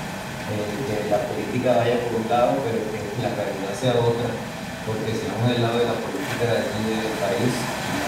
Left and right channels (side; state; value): both; identical; correlation 1.00